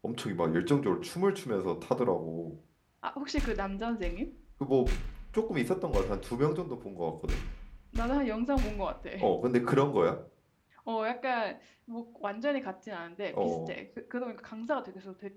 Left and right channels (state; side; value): identical; both; correlation 1.00